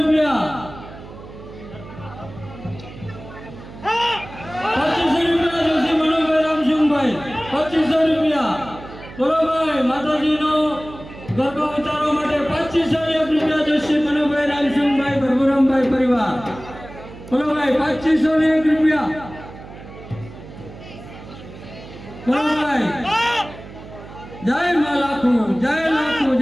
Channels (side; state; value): right; noise; hum, 16 dB below the sound